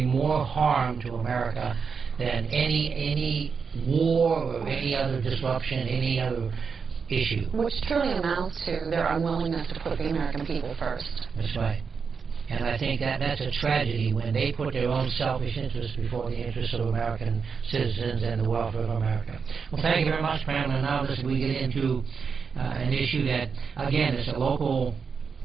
more harm to America than any war or any other disruption, any other issue. Which truly amounts to their unwillingness to put the American people first. That's right. And I think that's a tragedy when they put their own selfish interests before the interests of American citizens and the welfare of America. Well, thank you very much, Pamela. Now we get into an issue that, again, is a local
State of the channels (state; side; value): quieter; left; 5.7 dB